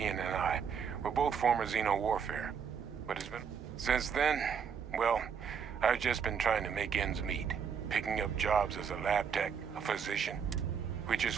and I. We're both former Xeno warfare. But it's been... Since then, well, I've just been trying to make ends meet. Picking up jobs as a lab tech, a physician. Which is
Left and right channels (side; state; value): left; quieter; 7.0 dB